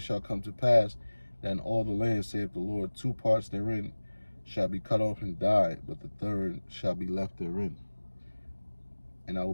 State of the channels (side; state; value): both; inverted; correlation -1.00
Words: shall come to pass that in all the land, saith the Lord, 2 parts therein shall be cut off and die, but the third shall be left therein. And I will